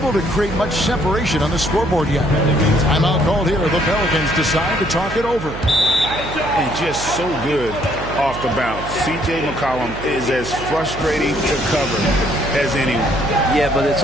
to create much separation on the scoreboard yet. Timeout called here. The Pelicans decide to talk it over. And just so good off the bounce. C.J. McCollum is as frustrating to cover as anyone. Yeah, but it's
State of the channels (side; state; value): right; noise; hum, 11 dB below the sound